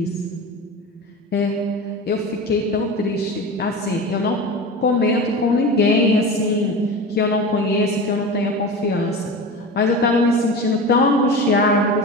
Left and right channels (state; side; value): normal; both; correlation 0.29